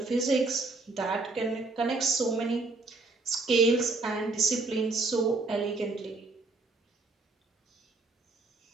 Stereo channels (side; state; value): left; quieter; 3.6 dB